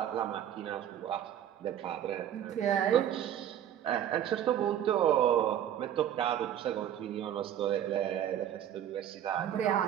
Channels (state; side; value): quieter; left; 10.5 dB